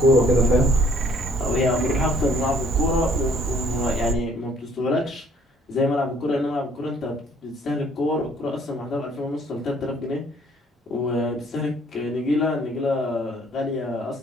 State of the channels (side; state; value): both; normal; correlation 0.60